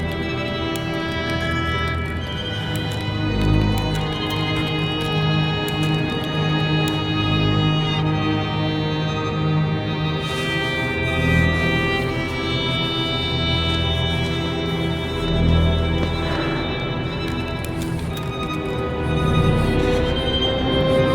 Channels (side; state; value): both; identical; correlation 1.00